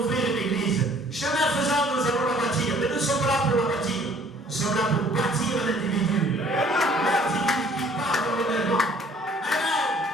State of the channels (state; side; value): normal; both; correlation 0.57